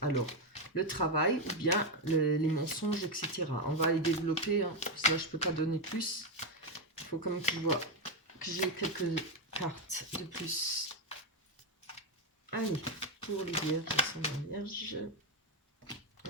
alors le travail ou bien les mensonges, etc. On va les développer. Hein. Ça, je ne peux pas donner plus. Il faut quand même que je vois que j'ai quelques cartes de plus. Allez, pour les vierges, la vierge.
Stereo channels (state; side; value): normal; both; correlation 0.08